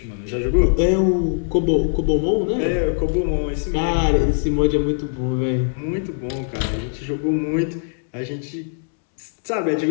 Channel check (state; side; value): silent; right; 65 dB below the other